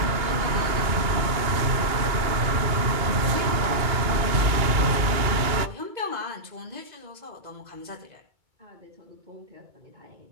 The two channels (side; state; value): left; late; 2.2 ms